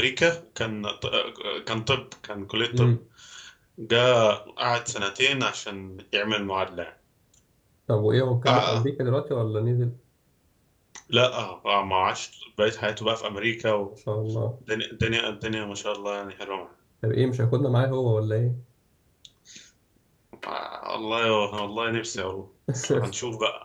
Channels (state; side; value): identical; both; correlation 1.00